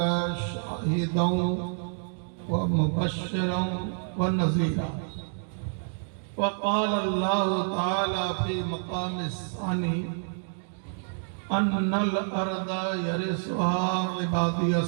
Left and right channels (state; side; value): silent; left; digital silence